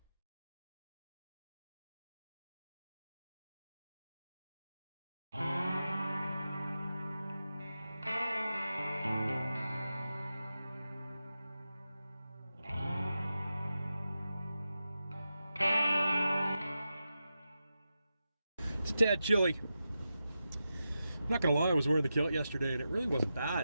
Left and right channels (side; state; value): both; inverted; correlation -0.90